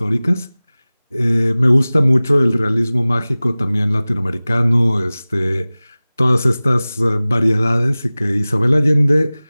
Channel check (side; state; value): both; inverted; correlation -0.98